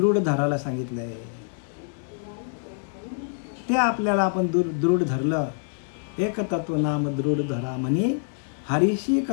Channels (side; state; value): right; silent; 59 dB below the other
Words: धरायला सांगितलंय. ते आपल्याला आपण दृढ धरलं. एक तत्व नाम दृढ धरा म्हणी, हरीशी